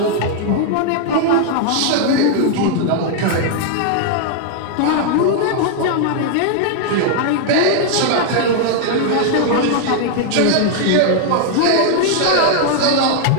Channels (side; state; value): both; different; correlation 0.00